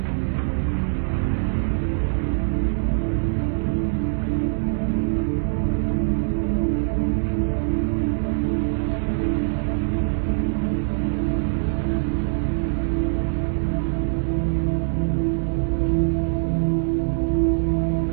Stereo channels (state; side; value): silent; left; digital silence